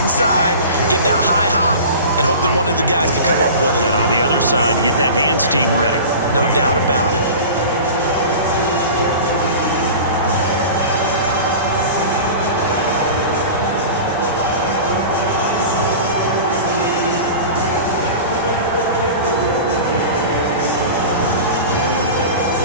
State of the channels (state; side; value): inverted; both; correlation -0.35